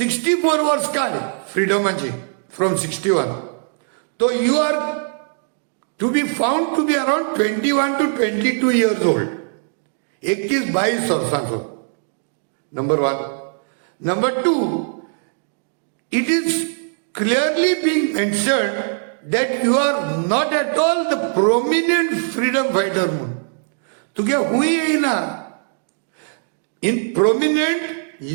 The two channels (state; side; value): silent; left; digital silence